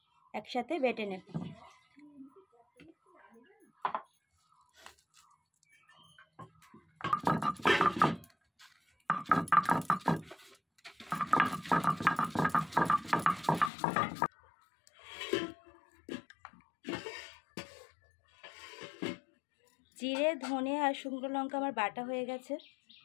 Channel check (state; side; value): drops out; right; at 13.7 s